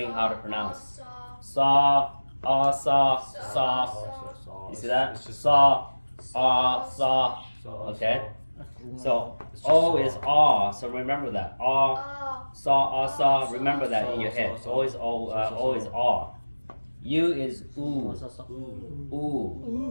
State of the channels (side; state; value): both; inverted; correlation -1.00